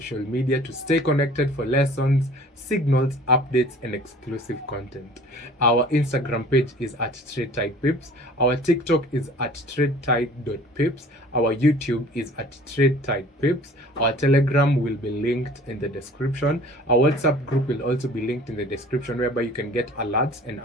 media to stay connected for lessons, signals, updates, and exclusive content. Our Instagram page is at TradeTidePips. Our TikTok is at TradeTide.pips. Our YouTube is at TradeTidePips. Our Telegram will be linked in the description. Our WhatsApp group will also be linked in the description, whereby you can get alerts and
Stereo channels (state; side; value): normal; both; correlation 0.48